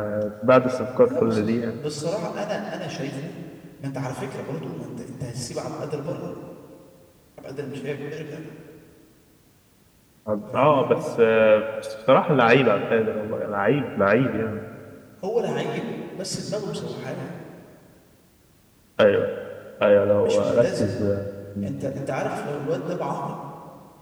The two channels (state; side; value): identical; both; correlation 1.00